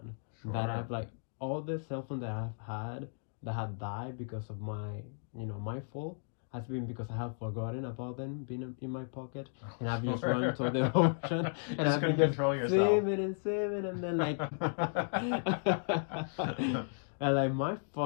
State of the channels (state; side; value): silent; right; digital silence